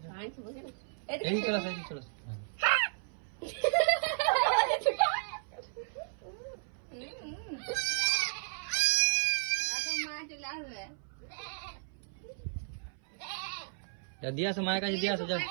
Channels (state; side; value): silent; left; 55 dB below the other